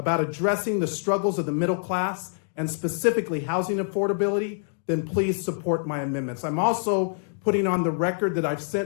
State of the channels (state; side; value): silent; right; digital silence